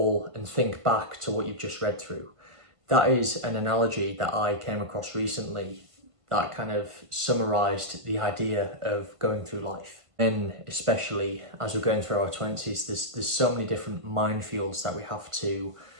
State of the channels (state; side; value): late; left; 1.5 ms